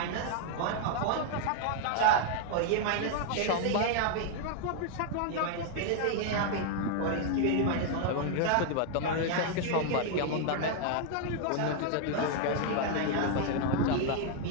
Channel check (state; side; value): different; both; correlation 0.00